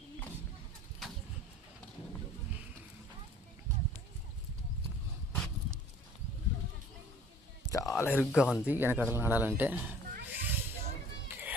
చాలా ఇరుగ్గా ఉంది వెనకడలు నడాలంటే.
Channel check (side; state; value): both; normal; correlation 0.51